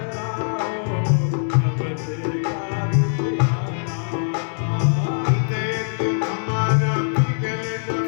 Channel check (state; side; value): silent; right; digital silence